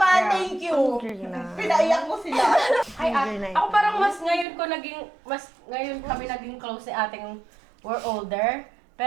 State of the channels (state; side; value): drops out; left; at 4.5 s